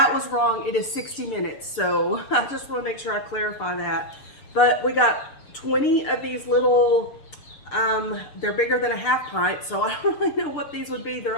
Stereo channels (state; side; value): late; right; 6.8 ms